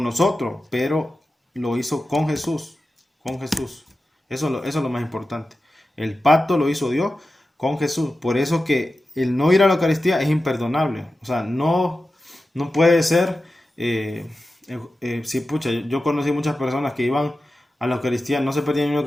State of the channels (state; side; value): normal; both; correlation 0.93